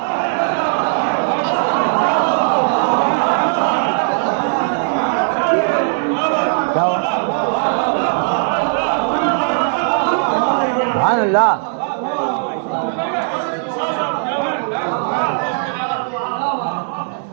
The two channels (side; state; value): left; silent; digital silence